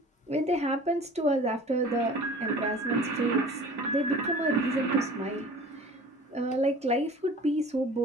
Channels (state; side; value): normal; both; correlation 0.43